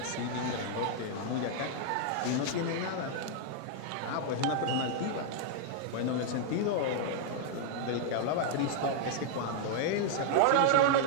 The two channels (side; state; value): both; different; correlation -0.01